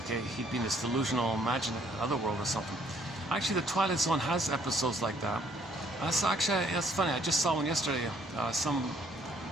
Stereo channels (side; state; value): both; normal; correlation 0.64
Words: He'd be in this delusional, imaginary otherworld or something. Actually, the Twilight Zone has episodes like that. That's funny. I just saw one yesterday. Some